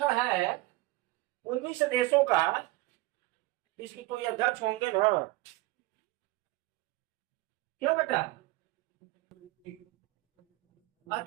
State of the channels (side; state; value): left; quieter; 19.9 dB